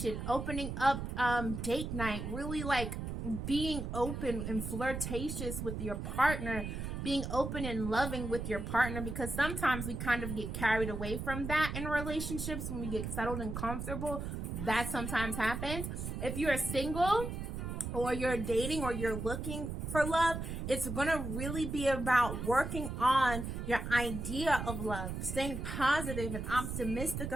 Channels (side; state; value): right; noise; rumble, 5 dB below the sound